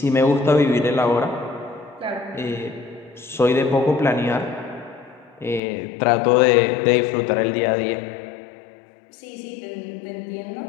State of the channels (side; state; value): right; drops out; at 5.6 s